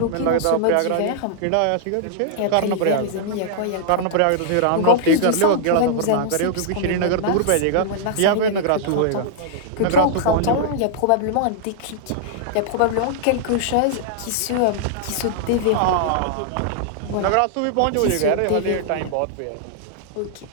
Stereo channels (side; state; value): both; different; correlation -0.01